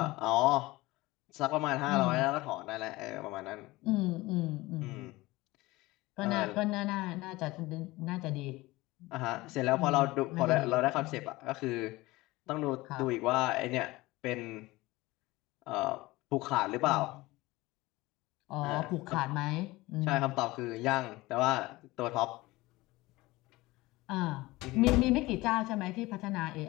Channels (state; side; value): quieter; right; 20.2 dB